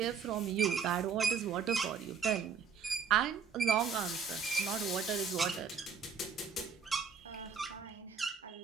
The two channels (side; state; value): left; quieter; 6.3 dB